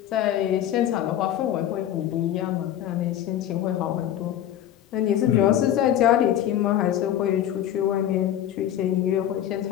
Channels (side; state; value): right; quieter; 11.3 dB